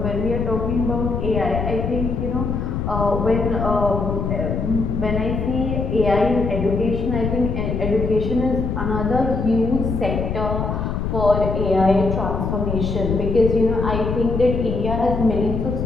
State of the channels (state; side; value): noise; left; rumble, 2 dB below the sound